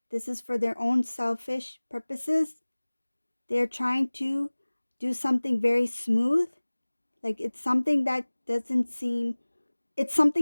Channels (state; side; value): inverted; both; correlation -1.00